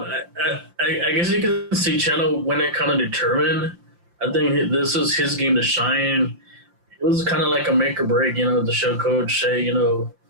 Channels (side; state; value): left; late; 5.8 ms